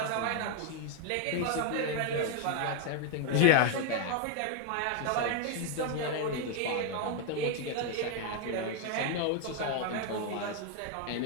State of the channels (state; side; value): different; both; correlation 0.01